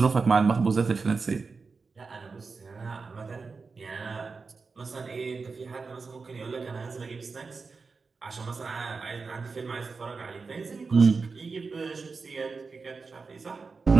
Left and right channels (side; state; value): left; quieter; 4.6 dB